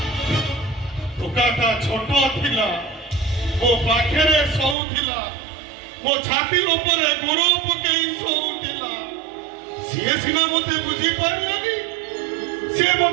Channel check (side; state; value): left; drops out; at 4.8 s